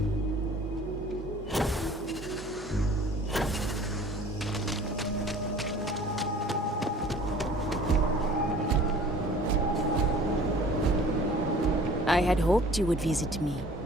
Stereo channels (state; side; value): normal; both; correlation 0.49